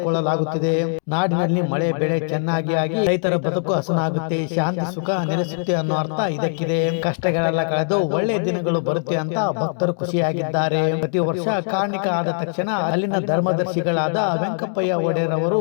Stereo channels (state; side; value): silent; right; digital silence